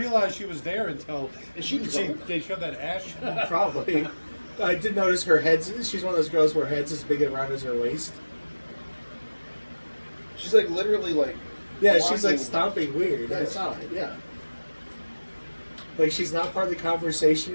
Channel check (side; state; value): both; inverted; correlation -1.00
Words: she was there until Is she drunk? they showed that ash. Probably. I did notice her head's... She's one of those girls where her head's as big around as her waist. She's like literally like... Yeah, she's like walking- stomping weird. I Yes. saw it, yeah. Like she's not part of the conversation,